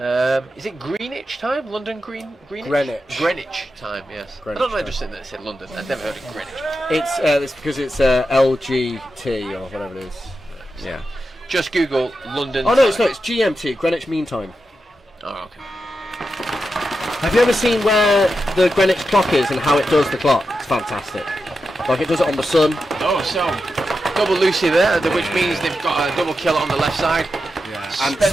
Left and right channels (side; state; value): both; normal; correlation 0.89